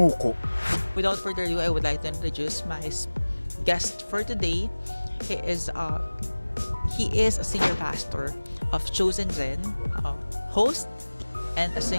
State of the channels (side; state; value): both; inverted; correlation -1.00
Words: Without further ado, I would like to introduce my guest for today. He is a senior pastor of Chosen Zen, host, and a